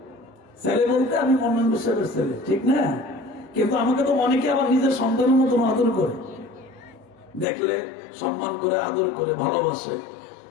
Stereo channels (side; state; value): right; drops out; at 7.5 s